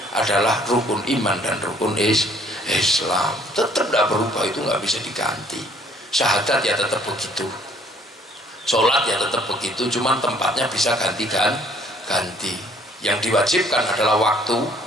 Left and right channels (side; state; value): both; normal; correlation 0.60